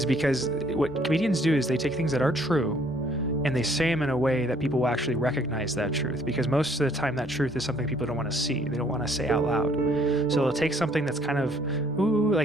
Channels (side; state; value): both; normal; correlation 0.62